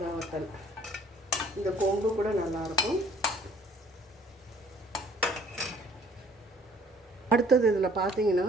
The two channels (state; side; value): normal; both; correlation 0.57